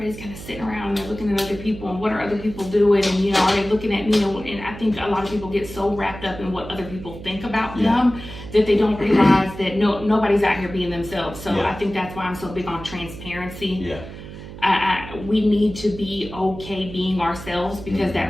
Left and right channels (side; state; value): right; noise; hum, 13 dB below the sound